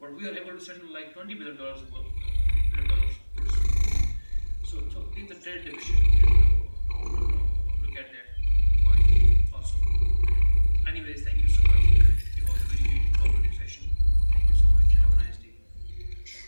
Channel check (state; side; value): inverted; both; correlation -1.00